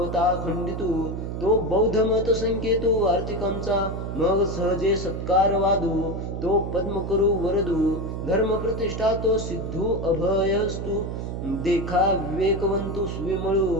खंडितु तो बौद्ध मत संकेतु आर्थिकांचा मग सहजे सत्कार वादू तो पद्म करू वरदू धर्म प्रतिष्ठा तो सिद्धू अभयस्तु देखा विवेकवंतु स्विमळू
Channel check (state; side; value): noise; right; hum, 5 dB below the sound